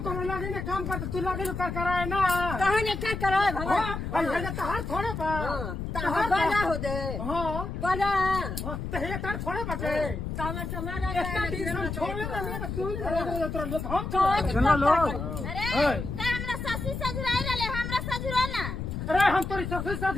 ना काम करते तू लगे कर कराए ना कहाँ ने क्या कराए भगवान हां ये तहार थोड़े बा तहार बड़ा हो दे हां बड़ा तो ये तार थोड़े बटे तो हम समारा इतना दिन हम छोड़े ना तो तू ही तुरंत हम तो सुना लो अरे त हमरा ससुर सजुराई रहले हमरा सजुरा ना अरे हम तोरी ससुर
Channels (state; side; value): noise; left; rumble, 5 dB below the sound